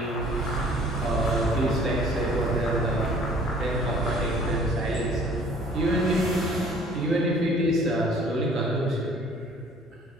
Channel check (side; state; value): both; normal; correlation 0.53